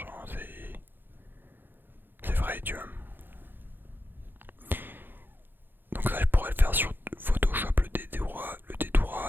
c'est vrai, tu vois. Donc ça, je pourrais le faire sur Photoshop, le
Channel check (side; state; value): left; late; 0.096 ms